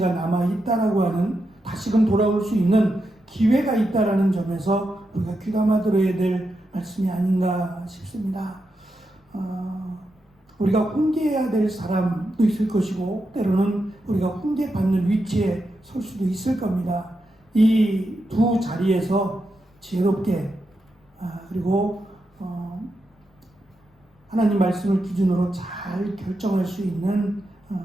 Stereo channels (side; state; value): both; normal; correlation 0.86